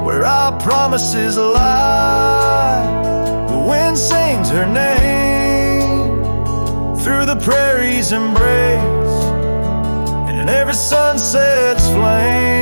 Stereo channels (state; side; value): inverted; both; correlation -1.00